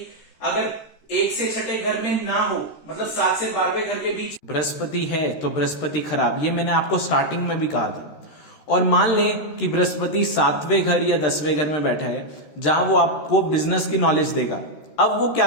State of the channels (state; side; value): late; right; 13 ms